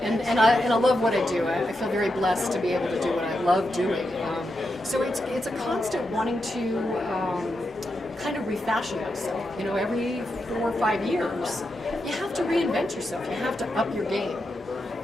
And I love what I do. I feel very blessed to be able to do what I love doing. So it's a constant wanting to kind of refashion yourself. You know, every 4 or 5 years, you have to reinvent yourself. You have to up your game.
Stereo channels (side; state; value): both; normal; correlation 0.86